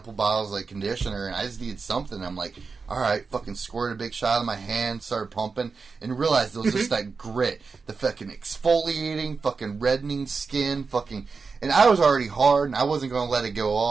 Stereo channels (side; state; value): left; quieter; 4.8 dB